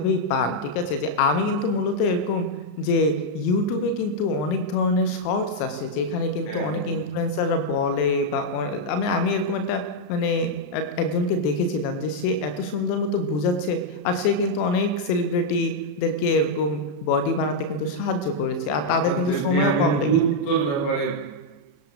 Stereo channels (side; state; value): right; late; 34 ms